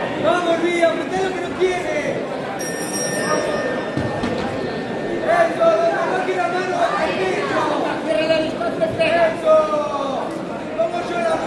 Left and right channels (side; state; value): both; identical; correlation 1.00